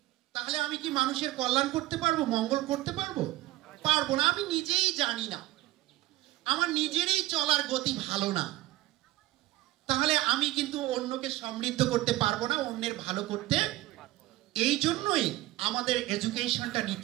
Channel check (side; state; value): left; quieter; 17.3 dB